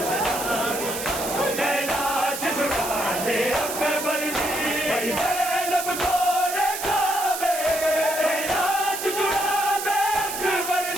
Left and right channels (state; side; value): noise; right; hiss, 6 dB below the sound